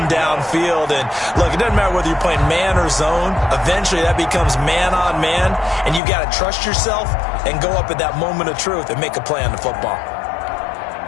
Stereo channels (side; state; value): right; drops out; at 6.0 s